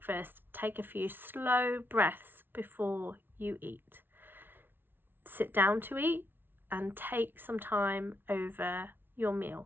take a few slow breaths before you eat. Sit down to eat and take some time over your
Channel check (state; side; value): late; left; 0.10 ms